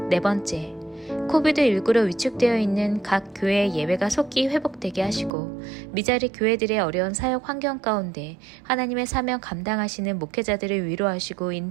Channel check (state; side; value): drops out; left; at 5.3 s